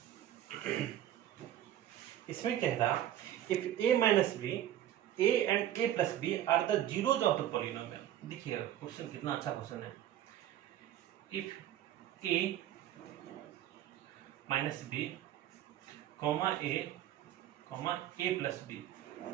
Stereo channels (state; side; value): quieter; left; 12.0 dB